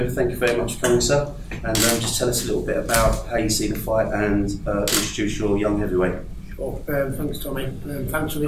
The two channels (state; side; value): identical; both; correlation 1.00